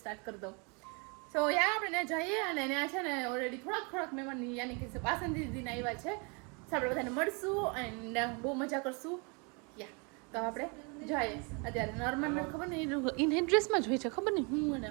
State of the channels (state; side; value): quieter; left; 32.9 dB